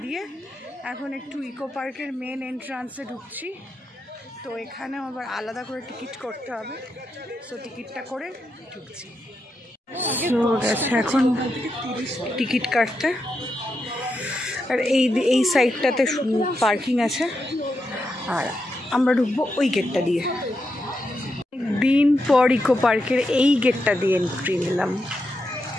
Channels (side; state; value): both; normal; correlation 0.85